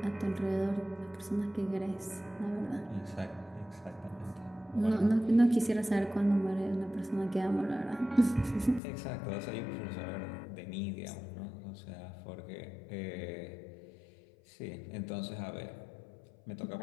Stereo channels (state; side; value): drops out; right; at 8.8 s